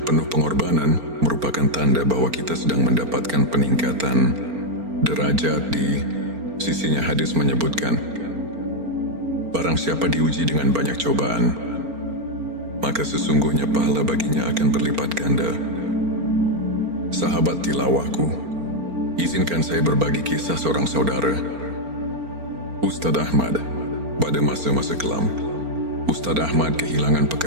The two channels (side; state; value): left; late; 4.4 ms